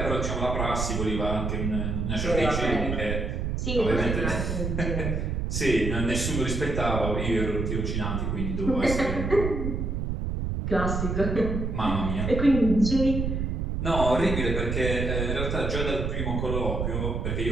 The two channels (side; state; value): right; noise; rumble, 1 dB below the sound